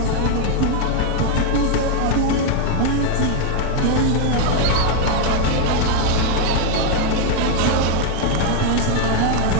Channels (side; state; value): both; different; correlation 0.00